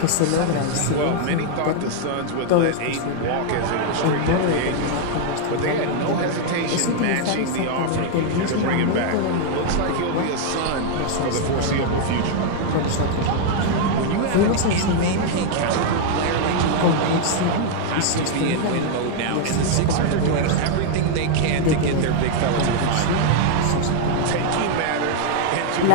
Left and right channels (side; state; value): both; different; correlation 0.00